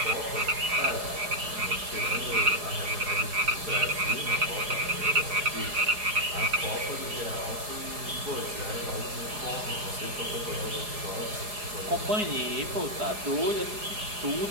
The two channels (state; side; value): late; left; 4.8 ms